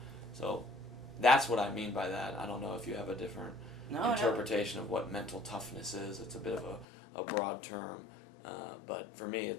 So that's what I mean by that. I don't know if you have a different interpretation of what mental toughness is. It's a bit of a broad term, but for me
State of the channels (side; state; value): right; drops out; at 6.9 s